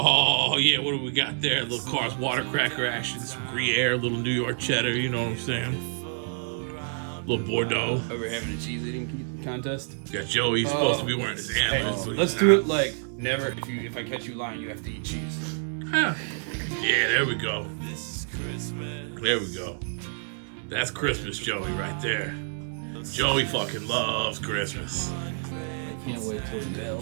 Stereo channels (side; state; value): left; silent; digital silence